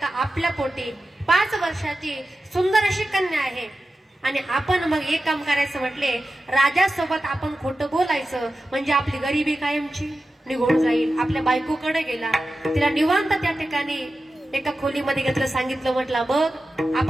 आपल्या पोटी 5 वर्षाची सुंदर अशी कन्या आहे. आणि आपण मग एक काम करायचं म्हटले, राजासोबत आपण खोटं बोलायचं म्हणजे आपली गरिबी कायमची निघून जाईल. आपल्या बायकोकडे गेला. तिला निवांत त्या ठिकाणी एका खोलीमध्ये घेतलं. सांगितलं, म्हटलं बघ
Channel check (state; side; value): normal; both; correlation 0.93